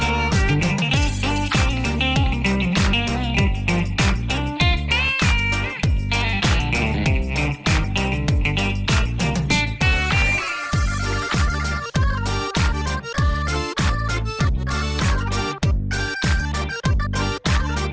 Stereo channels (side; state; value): both; identical; correlation 1.00